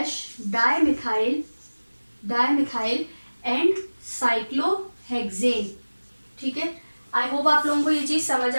dimethyl and cyclohexane. ठीक है, आई होप आप लोगों को ये चीज़ समझ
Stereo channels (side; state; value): both; inverted; correlation -1.00